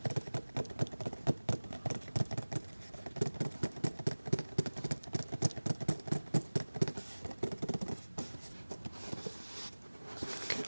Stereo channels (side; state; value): both; inverted; correlation -1.00